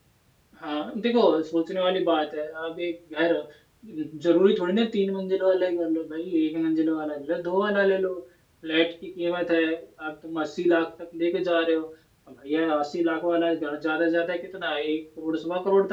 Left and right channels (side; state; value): both; identical; correlation 1.00